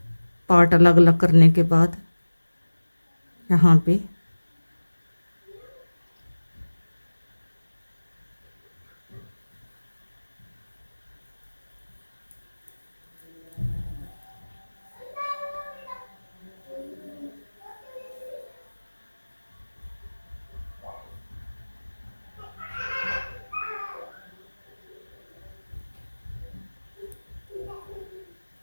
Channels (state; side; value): inverted; both; correlation -1.00